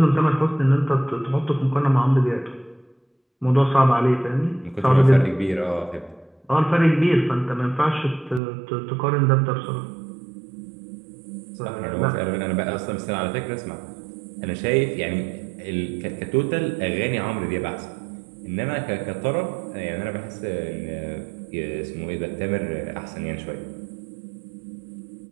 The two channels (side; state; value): left; drops out; at 8.4 s